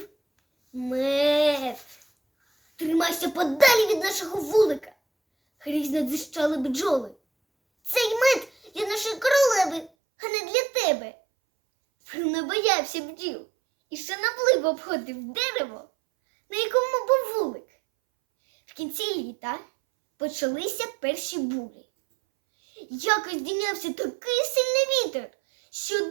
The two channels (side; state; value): left; drops out; at 9.9 s